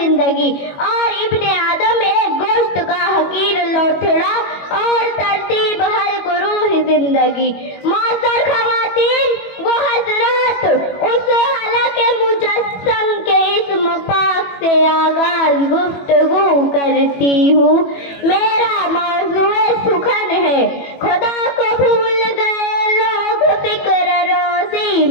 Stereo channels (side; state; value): right; late; 21 ms